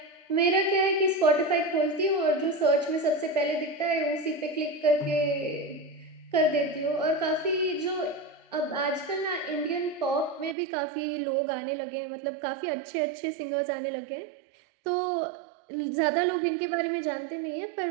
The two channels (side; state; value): left; drops out; at 10.6 s